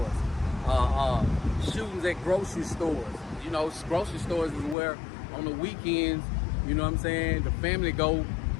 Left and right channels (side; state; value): right; drops out; at 4.8 s